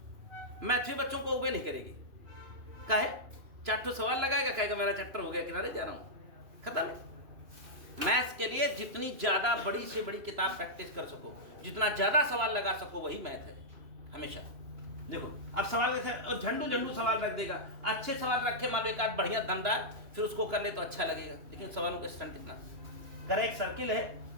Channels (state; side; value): late; left; 3.0 ms